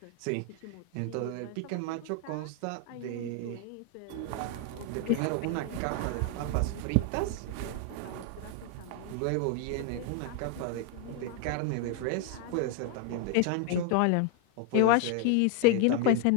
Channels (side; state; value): both; different; correlation 0.00